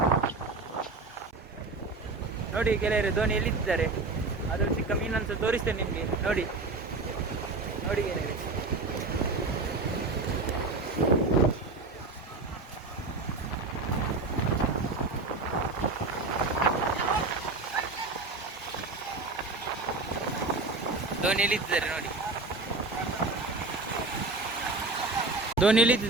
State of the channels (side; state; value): left; quieter; 3.6 dB